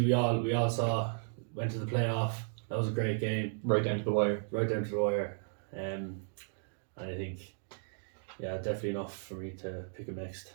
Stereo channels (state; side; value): silent; left; digital silence